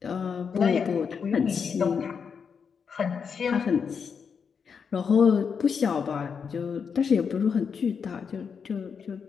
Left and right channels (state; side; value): quieter; right; 6.3 dB